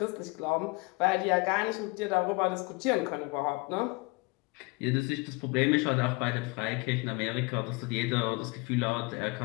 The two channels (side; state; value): right; quieter; 26.5 dB